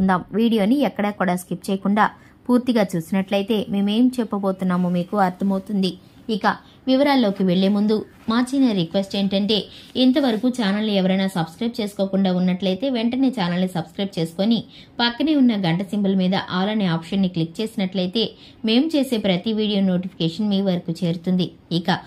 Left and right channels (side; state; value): both; identical; correlation 1.00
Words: వీడియోని ఎక్కడా కూడా స్కిప్ చేయకుండా పూర్తిగా చూసినట్లయితే మేమేం చెప్పబోతున్నామో మీకు అర్థమవుతుంది. ఇక వివరాల్లోకి వెళ్లే ముందు మా చిన్న రిక్వెస్ట్ ఏంటంటే, ఇంతవరకు ఛానల్ని ఎవరైనా సబ్స్క్రైబ్ చేసుకోకుండా ఉన్నట్లయితే వెంటనే ఛానల్ని సబ్స్క్రైబ్ చేసుకుని పక్కనే ఉన్న గంట సింబల్ మీద ఆల్ అనే ఆప్షన్ని క్లిక్ చేసినట్లయితే మేము చేసే ప్రతి వీడియో నోటిఫికేషన్ మీ వరకు చేరుతుంది. ఇక